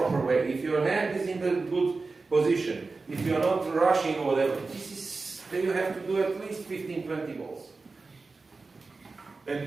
way, if your hand is in the good position, if you are not rushing or whatever, then you have to do at least 15, 20 balls. And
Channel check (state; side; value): quieter; left; 3.9 dB